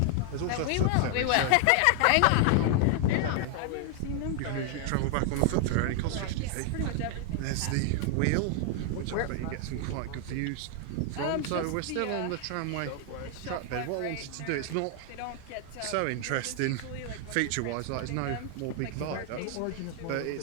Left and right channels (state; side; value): different; both; correlation 0.00